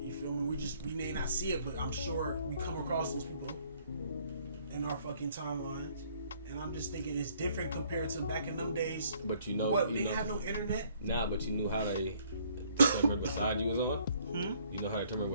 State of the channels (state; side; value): inverted; both; correlation -0.63